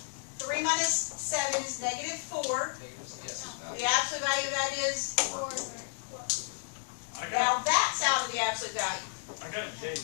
3 minus 7 is negative 4. Yes. The absolute value of that is, I now got, that's out of the absolute value. I got a J.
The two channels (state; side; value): silent; right; digital silence